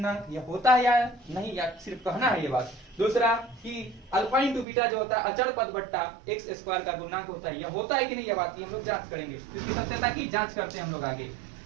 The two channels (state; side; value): drops out; left; at 4.7 s